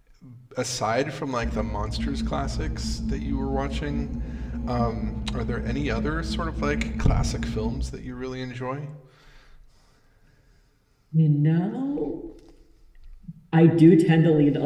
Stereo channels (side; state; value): both; identical; correlation 1.00